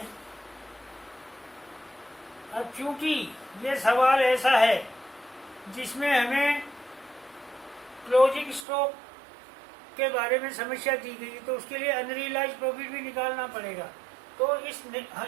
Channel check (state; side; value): drops out; left; at 8.7 s